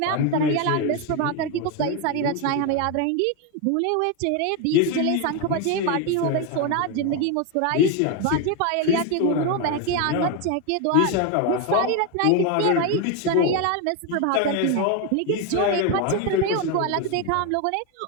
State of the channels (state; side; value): different; both; correlation 0.02